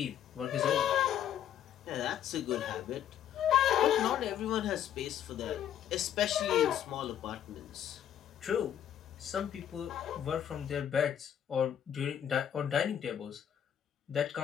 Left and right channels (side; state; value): right; quieter; 10.0 dB